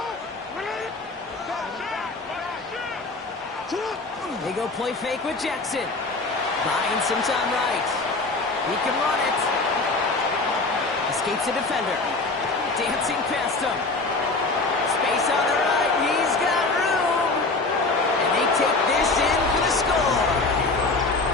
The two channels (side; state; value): right; quieter; 3.5 dB